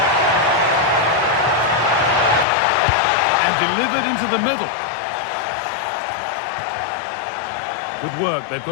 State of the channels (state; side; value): drops out; right; at 2.5 s